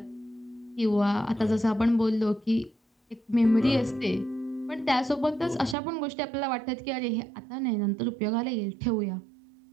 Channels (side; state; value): left; drops out; at 5.8 s